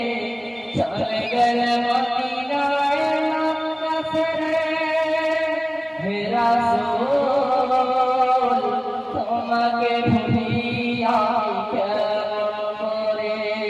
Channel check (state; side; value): identical; both; correlation 1.00